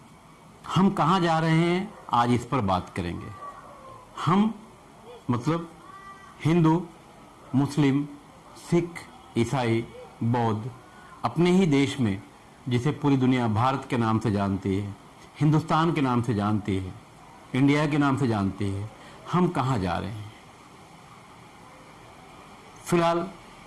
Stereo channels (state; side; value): identical; both; correlation 1.00